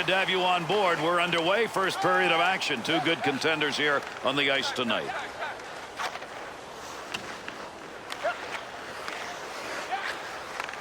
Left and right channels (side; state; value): both; identical; correlation 1.00